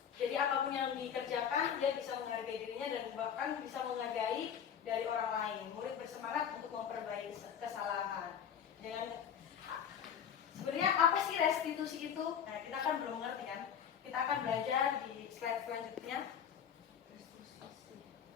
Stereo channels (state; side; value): quieter; right; 8.2 dB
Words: Jadi apapun yang dikerjakan dia bisa menghargai dirinya dan bahkan bisa menghargai dari orang lain. Murid bersemangat untuk memperbaiki kesalahan. Sebenarnya apa sih restitusi itu? Nah, kita kan belum mengerti kan? Kita akan belajar di slide selanjutnya.